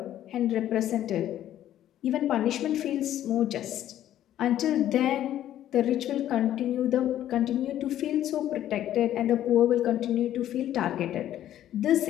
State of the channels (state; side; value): quieter; right; 12.0 dB